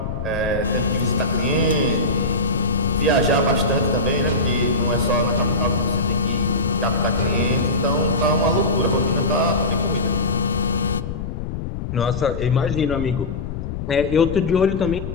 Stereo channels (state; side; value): noise; left; rumble, 6 dB below the sound